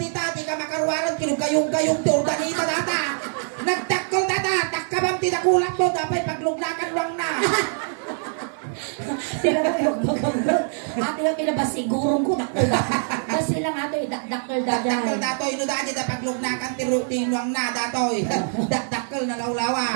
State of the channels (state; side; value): silent; left; 63 dB below the other